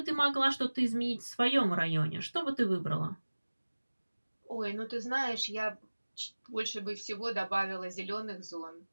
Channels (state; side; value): inverted; both; correlation -1.00